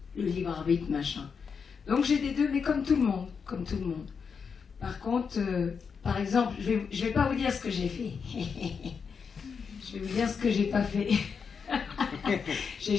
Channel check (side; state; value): right; quieter; 6.0 dB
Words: le libre arbitre, machin. Donc j'ai des deux, mais comme tout le monde, comme tout le monde. Par contre, par exemple, je vais pas vous dire ce que j'ai fait. Je vais vous dire ce que j'ai pas fait. J'ai